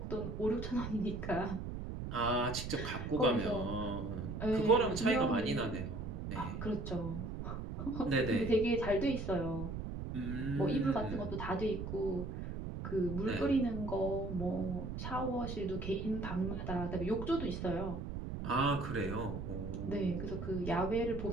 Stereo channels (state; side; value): noise; right; rumble, 5 dB below the sound